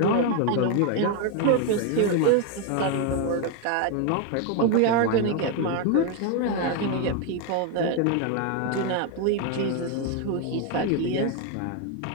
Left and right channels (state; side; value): different; both; correlation 0.01